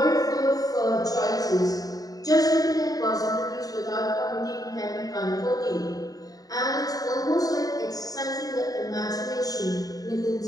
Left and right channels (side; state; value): right; late; 0.18 ms